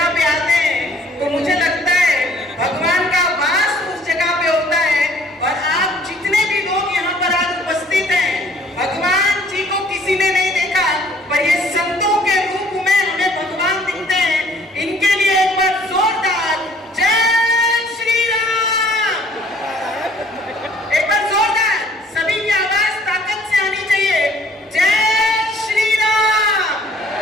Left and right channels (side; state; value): both; normal; correlation 0.57